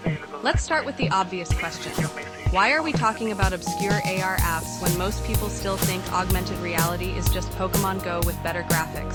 Let's start with the obvious question. Why are we talking about obscure AR apps when most people still think augmented reality is just Pokemon Go with better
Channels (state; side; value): identical; both; correlation 1.00